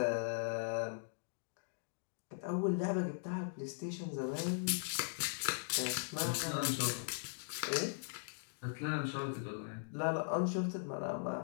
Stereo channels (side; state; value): right; silent; digital silence